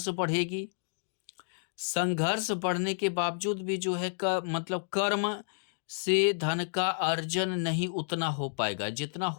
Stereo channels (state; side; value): silent; right; digital silence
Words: बढ़ेगी, संघर्ष बढ़ने के बावजूद भी जो है मतलब कर्म से धन का अर्जन नहीं उतना हो पाएगा जितना